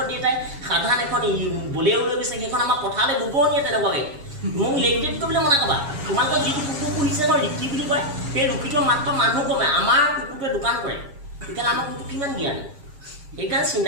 দেউতাই সাধাৰণ এখন বলেও লৈ গৈছে সেইখন আমাৰ পথাৰলৈ গোবৰ নিয়ে তেনেকুৱাকৈ মোক লেগটেড কৰিবলৈ মনা ক'বা তোমালোকৰ যিটো কুকুৰ পুহিছে মই ৰিকি বুলি কয় সেই ৰুকিটো মাত্ৰ মানুহ কমে আমাৰ কুকুৰটোৱে দোকান কৰে তেতিয়াহ'লে আমাৰ কুকুৰটো কিমান জ্ঞানী সেইকাৰণে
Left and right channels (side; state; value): left; late; 7.3 ms